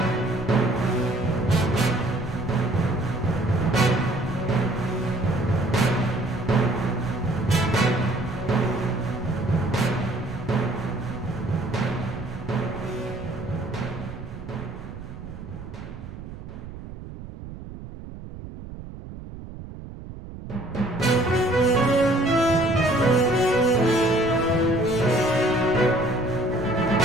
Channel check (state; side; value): noise; right; rumble, 12 dB below the sound